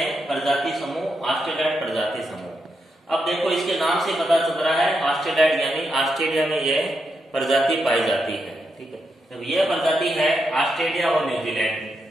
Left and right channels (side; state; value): both; normal; correlation 0.83